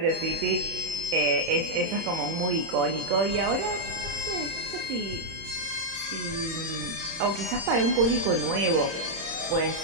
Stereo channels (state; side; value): late; left; 31 ms